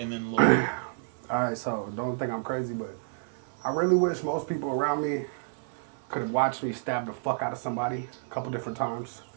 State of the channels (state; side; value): silent; left; 58 dB below the other